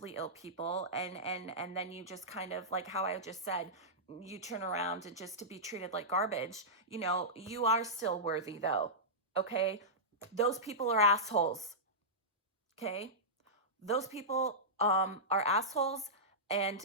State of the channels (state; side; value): normal; both; correlation -0.14